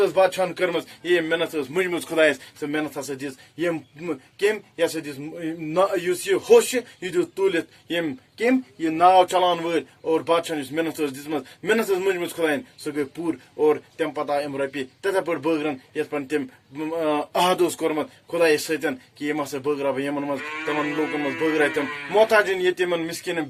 بادشاہن کٔرمٕژ ییٚمۍ محنت ٲس مٔنجمٕژ خۄدایس سۄ محنت ہسا دِژ یِم کٔمۍ یہِ ہسا دِژ یُس یہِ ہوٚس چھُ یہِ دیُت تُلِتھ یِم کٔمۍ یہِ ناو چلاون وٲلۍ اور بادشاہن یُس محنت ٲس دِژمٕژ محنت ٲس مٔنجمٕژ خۄداین سۄ گٔے پوٗرٕ اور تَمہِ پتہٕ آے یِم رۄپیہِ تِتھے پٲٹھۍ بٲگرن یِتھ پٲٹھۍ تٔمۍ عہد اوس کوٚرمُت خۄدایس سۭتۍ کہِ یِم ہسا بٲگراو بہٕ یِمن منٛز تِمن لوٗکن منٛز بٲگراے تِم محتاجن یتیٖمن مِسکیٖنن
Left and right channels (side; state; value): both; identical; correlation 1.00